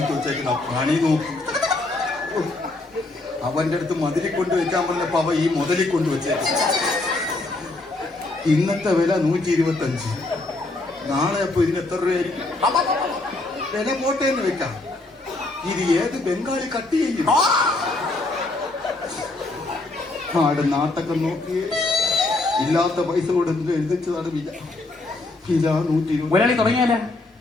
വെച്ചേക്കുന്ന പണി നോക്കും. അവന്റെ അടുത്ത് മതിലിൽ കൊണ്ട് വെക്കാൻ പറഞ്ഞപ്പോ അവ ഈ മുതലിൽ കൊണ്ട് വെച്ചേക്കും. ഇന്നത്തെ വില 125. നാളെ അപ്പൊ ഇതിന് എത്ര രൂപയായിരിക്കും? വില പോട്ടേന്ന് വെക്കാം. ഇത് ഏത് ബംഗാളി കട്ട് ചെയ്യും? ആട് നാട്ടൊക്കെ നോക്കിയേ, ഇല്ലാത്ത പൈസ കൊടുത്ത് എഴുതിച്ചതാണ് വില. വില 120. ഒരാളി തുടങ്ങിയാലേ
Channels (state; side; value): quieter; right; 3.0 dB